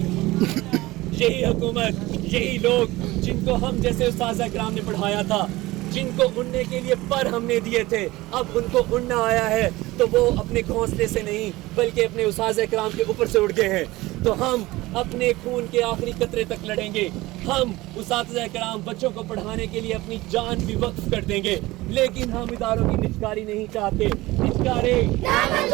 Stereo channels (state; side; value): quieter; left; 19.3 dB